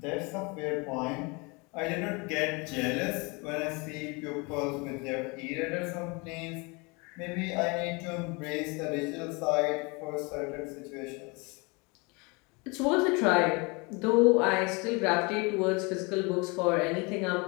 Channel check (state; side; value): quieter; right; 28.6 dB